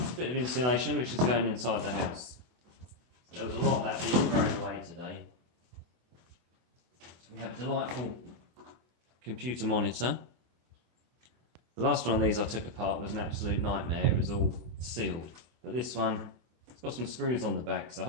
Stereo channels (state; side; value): late; left; 24 ms